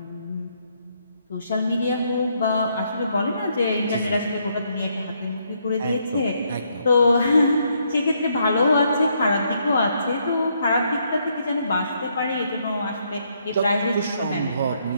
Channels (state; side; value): inverted; both; correlation -0.73